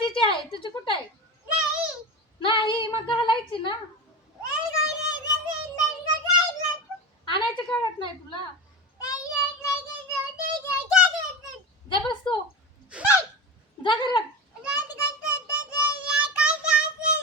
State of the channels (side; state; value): both; normal; correlation 0.25